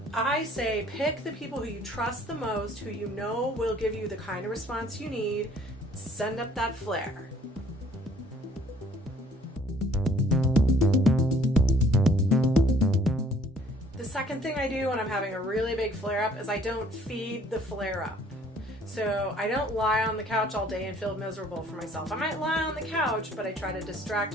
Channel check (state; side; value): normal; both; correlation 0.58